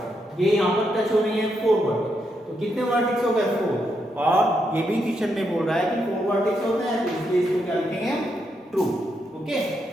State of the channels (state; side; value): normal; both; correlation 0.81